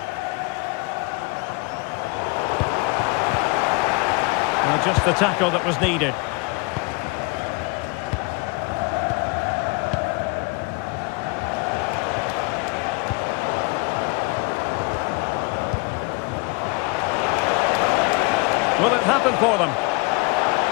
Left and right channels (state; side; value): quieter; right; 28.4 dB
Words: Well, just the tackle that was needed. Will it happen for them?